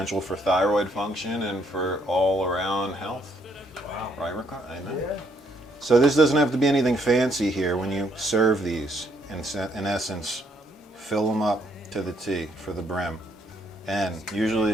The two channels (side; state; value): both; normal; correlation 0.70